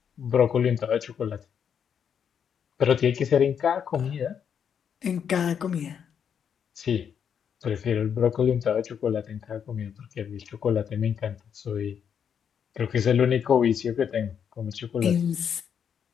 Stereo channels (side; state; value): right; quieter; 7.8 dB